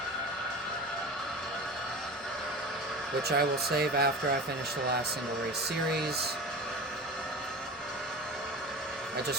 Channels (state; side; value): normal; both; correlation 0.32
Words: which I will save after I finish the last single race series. I